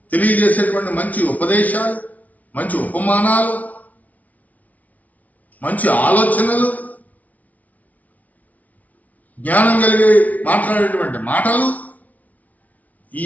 తెలియజేసేటువంటి మంచి ఉపదేశాలు, మంచి ఉపమానాలు, మంచి ఆలోచనలు, జ్ఞానం కలిగి మాట్లాడేటువంటి మాటలు, ఈ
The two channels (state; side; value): late; right; 0.072 ms